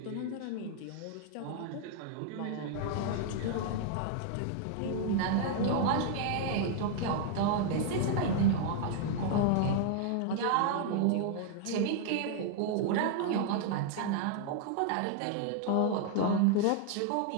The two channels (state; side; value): different; both; correlation 0.00